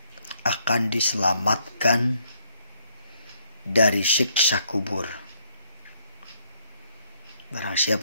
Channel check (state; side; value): inverted; both; correlation -0.70